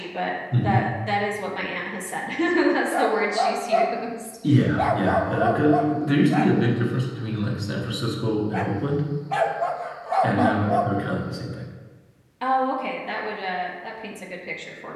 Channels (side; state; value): both; identical; correlation 1.00